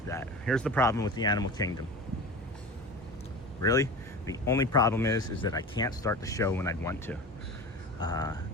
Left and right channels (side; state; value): both; normal; correlation 0.32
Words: that. Here's the problem with the Animal Kingdom. Really? The only problem is that I can't start the show when I'd want to.